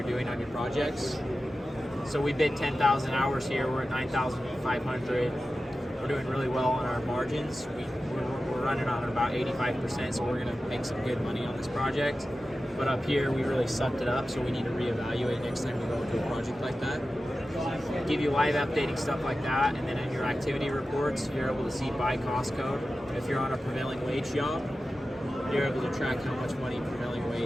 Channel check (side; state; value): both; normal; correlation 0.94